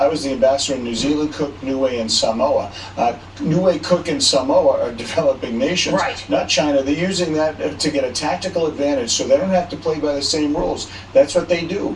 was the ambassador in New Zealand, Cook, Niue, and Samoa. Niue, Cook, and Samoa are developing nations, right, not China. They're using that to get a tactical advantage so they don't have to play by the same rules. That's what they do.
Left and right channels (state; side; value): identical; both; correlation 1.00